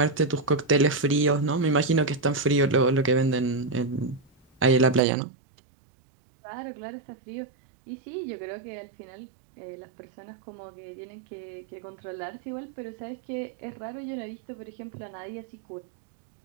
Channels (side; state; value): left; drops out; at 5.0 s